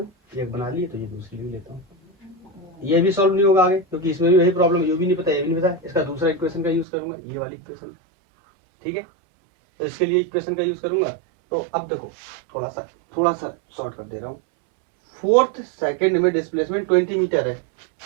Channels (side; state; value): left; drops out; at 6.9 s